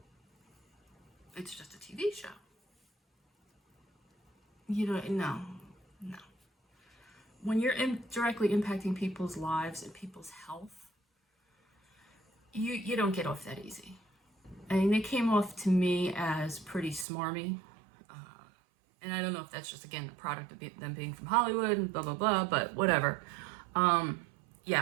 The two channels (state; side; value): drops out; left; at 17.1 s